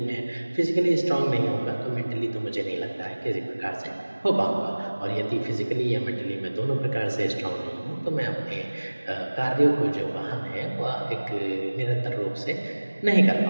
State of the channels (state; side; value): inverted; both; correlation -1.00